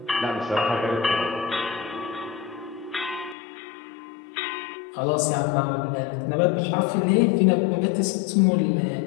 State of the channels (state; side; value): drops out; right; at 3.4 s